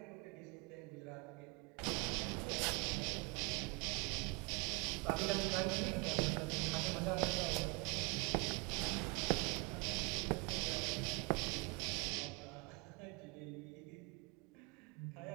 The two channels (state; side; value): quieter; left; 27.7 dB